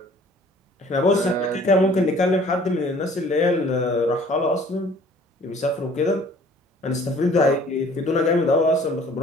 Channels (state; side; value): normal; both; correlation 0.53